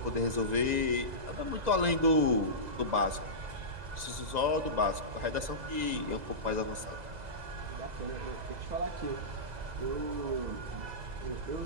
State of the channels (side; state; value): left; late; 2.0 ms